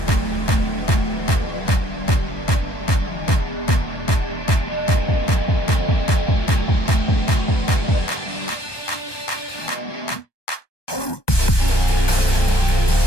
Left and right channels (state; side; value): late; right; 1.2 ms